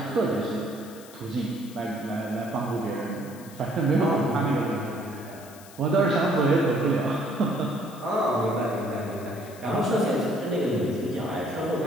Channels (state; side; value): noise; left; hiss, 20 dB below the sound